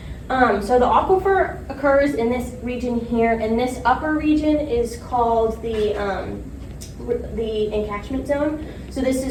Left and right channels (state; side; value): identical; both; correlation 1.00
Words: So the aquifer occurs in this region here, and this upper region is called the encatchment zone. So this